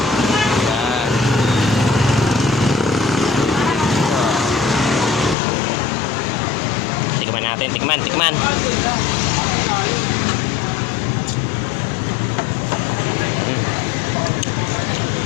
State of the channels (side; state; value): right; drops out; at 5.4 s